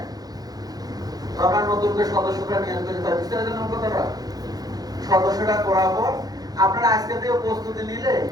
আমরা নতুন করে সদস্যরা নিয়ত করে বুঝতে পারছেন কথাটা? সদস্যটা করার পর আপনারা আজকে থেকে প্রস্তুতি নিলে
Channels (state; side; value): late; left; 0.19 ms